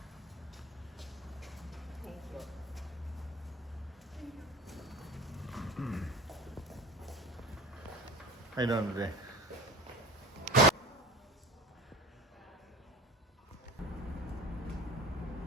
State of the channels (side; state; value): both; normal; correlation 0.35